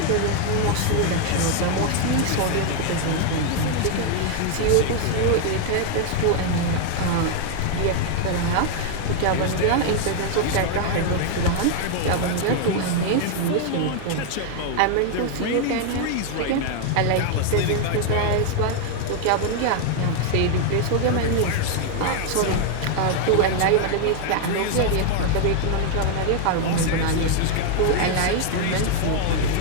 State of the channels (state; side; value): different; both; correlation 0.00